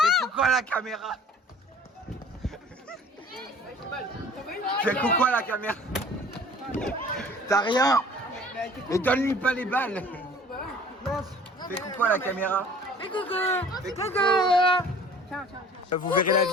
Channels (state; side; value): normal; both; correlation 0.48